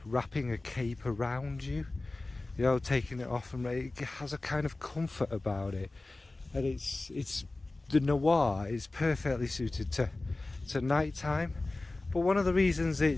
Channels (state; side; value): quieter; right; 3.1 dB